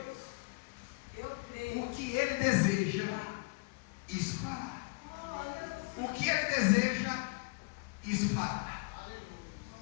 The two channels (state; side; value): quieter; right; 28.5 dB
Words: creio. O que ele deseja, isso fará. O que ele deseja, isso fará.